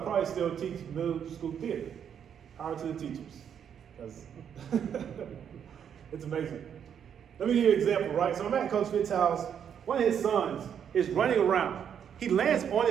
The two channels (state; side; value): quieter; left; 8.3 dB